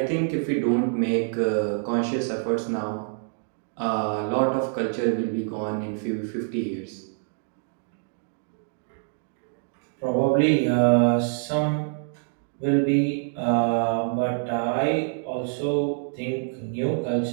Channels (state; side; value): silent; left; digital silence